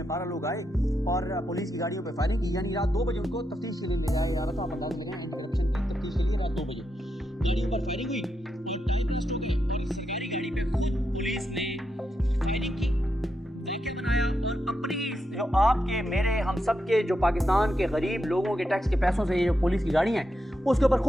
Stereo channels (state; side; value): normal; both; correlation 0.84